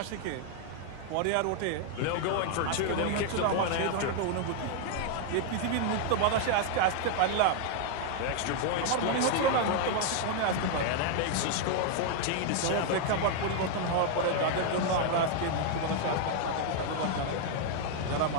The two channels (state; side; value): different; both; correlation 0.00